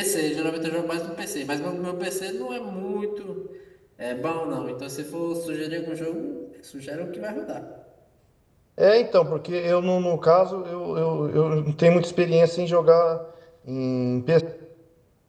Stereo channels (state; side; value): identical; both; correlation 1.00